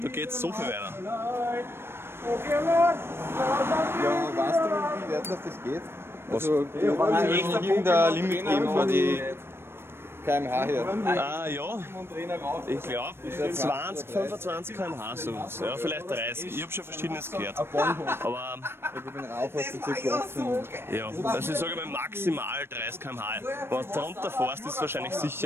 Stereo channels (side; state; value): left; late; 0.12 ms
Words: Da geht's so viel weiter. Ja, weißt du, wie weit das geht? Was? Also, in der Limit geben für die km/h her. Ah ja, ich glaube 20, 25 km/h sowas. Ja, vielleicht 30. Ich habe schon Verschiedenes gehört. Aber Ich bin rauf, hast du circa 18. ja, also ich sage mal maximal 30 km/h. Wenn du drunter fährst, ist es wahrscheinlich